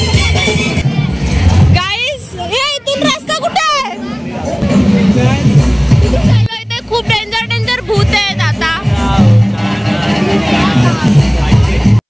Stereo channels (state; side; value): identical; both; correlation 1.00